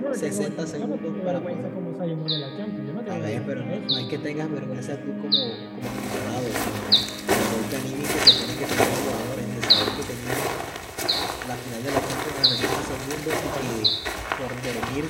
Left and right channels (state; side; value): identical; both; correlation 1.00